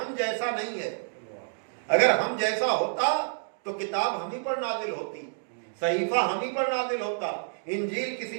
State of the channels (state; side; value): silent; left; digital silence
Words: جیسا نہیں ہے۔ اگر ہم جیسا ہوتا تو کتاب ہم ہی پر نازل ہوتی، صحیفہ ہم ہی پر نازل ہوتا، انجیل